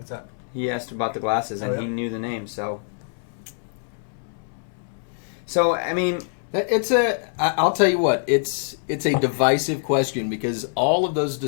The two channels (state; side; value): silent; right; 61 dB below the other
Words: that? He asked about the glasses, and Oh, yeah. he knew the name, so. So, I mean, I'll tell you what, it's a divisive question because all of those